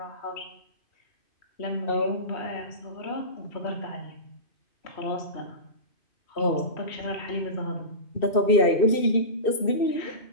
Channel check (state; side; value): late; right; 2.7 ms